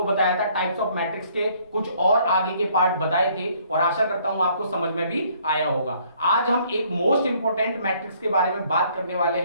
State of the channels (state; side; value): inverted; both; correlation -0.63